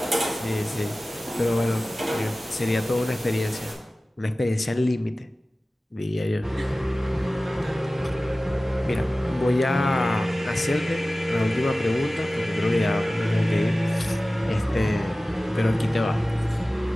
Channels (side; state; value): both; normal; correlation 0.97